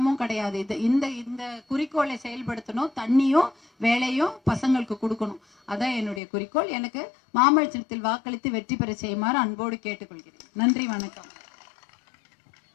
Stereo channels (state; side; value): drops out; right; at 6.2 s